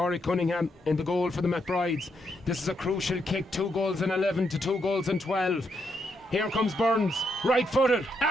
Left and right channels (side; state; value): both; normal; correlation 0.79